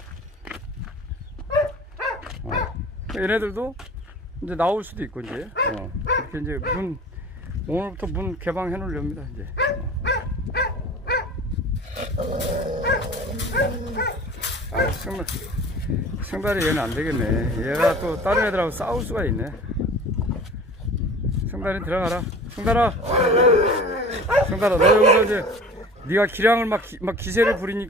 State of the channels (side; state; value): both; normal; correlation 0.42